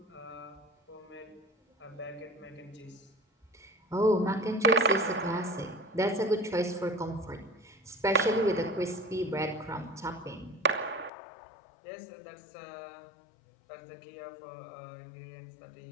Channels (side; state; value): right; drops out; at 11.1 s